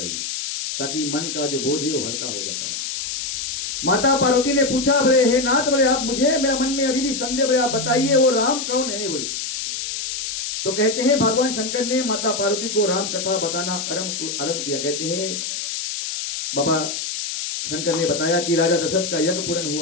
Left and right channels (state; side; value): noise; left; hiss, 4 dB below the sound